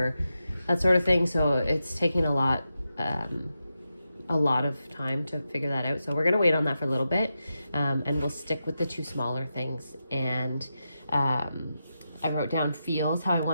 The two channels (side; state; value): both; inverted; correlation -0.88